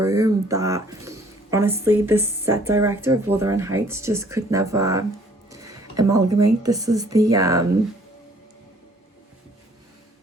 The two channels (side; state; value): both; normal; correlation 0.58